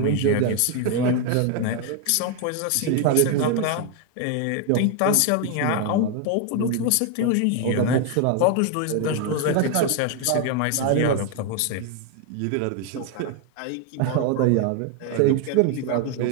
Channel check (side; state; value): both; different; correlation 0.01